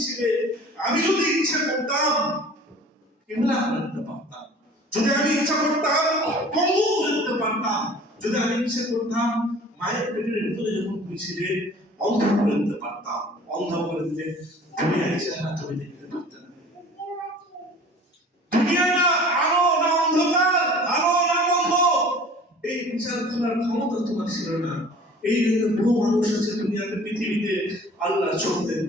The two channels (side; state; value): both; normal; correlation 0.46